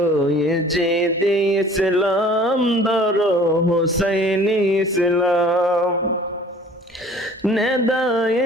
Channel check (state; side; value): normal; both; correlation 0.50